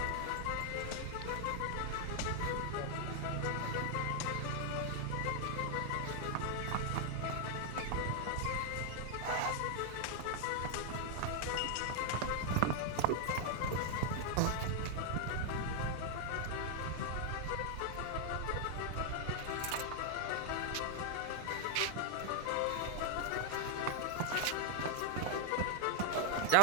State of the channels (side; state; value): both; different; correlation 0.00